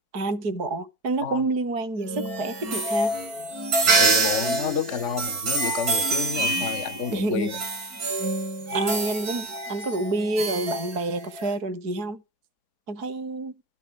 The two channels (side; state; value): left; late; 4.4 ms